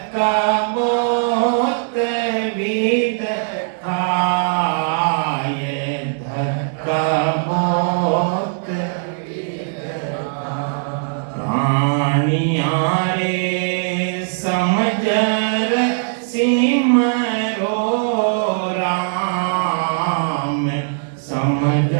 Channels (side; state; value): left; silent; 65 dB below the other